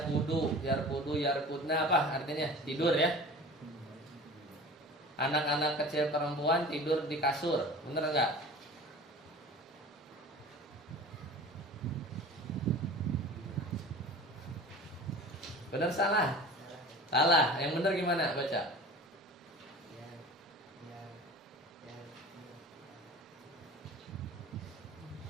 yarkudna apa artinya? Tidur ya. Anak-anak kecil perempuan tidur di kasur. Bener enggak? Bener salah? Salah. Yang bener gimana? Baca.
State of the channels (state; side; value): normal; both; correlation 0.39